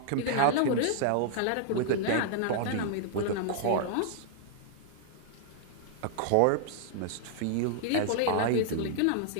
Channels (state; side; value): different; both; correlation -0.01